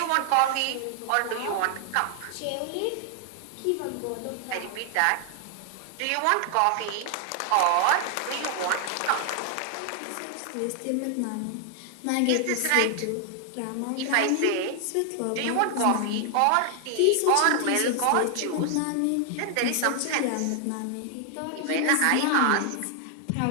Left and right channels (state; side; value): different; both; correlation 0.00